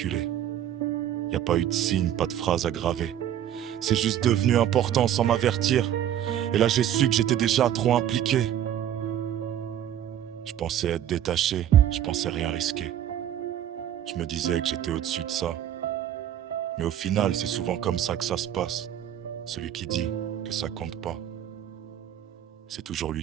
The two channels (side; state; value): left; quieter; 10.8 dB